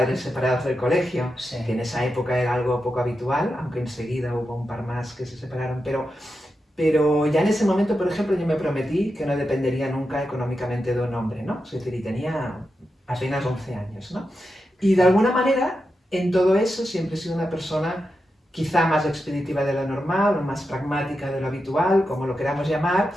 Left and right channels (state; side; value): normal; both; correlation 0.88